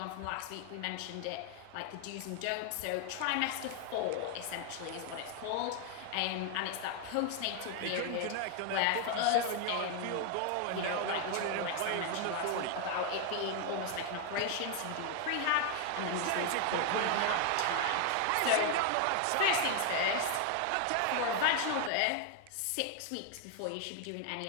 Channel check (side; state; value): both; different; correlation 0.00